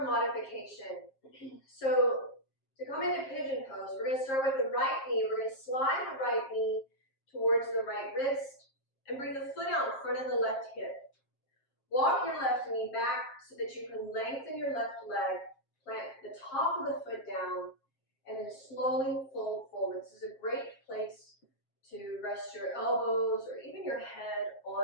modification. So to come into pigeon pose, we're going to start with the right knee. We're going to slide the right knee towards the right wrist and bring the foot out in front of the left hip. Walk your left knee back so that you can lengthen your left leg, plant the top of the foot down, and then slowly fold forward. This is a great place to rest your elbows or even your head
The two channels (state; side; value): late; right; 7.5 ms